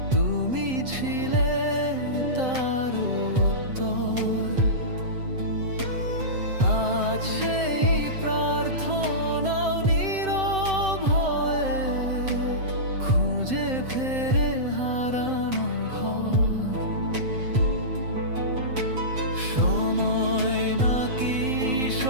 তুমি ছিলে তার উত্তর। আজ সেই প্রার্থনাও নীরব হয়ে খুঁজে ফেরে হারানো ঘর। সময় নাকি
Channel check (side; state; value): left; late; 7.8 ms